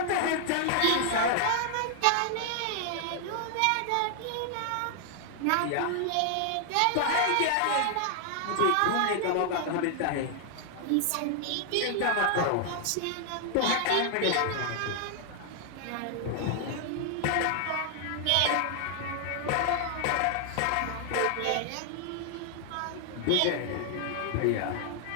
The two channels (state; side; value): different; both; correlation 0.00